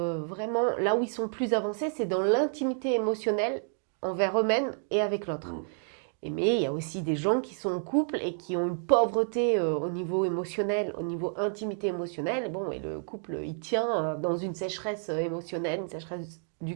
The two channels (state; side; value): silent; left; 58 dB below the other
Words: là où ils sont plus avancés, c'est dans l'intimité émotionnelle envers eux-mêmes et avec l'autre. Mais il y a aussi des gens qui sont en couple et qui ont une pauvreté au niveau émotionnel, au niveau intimité émotionnelle. Bon, et le couple, il tient dans une sécheresse émotionnelle, une sécheresse